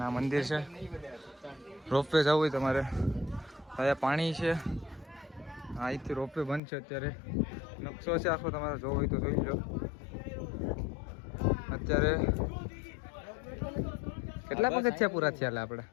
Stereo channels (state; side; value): drops out; right; at 6.6 s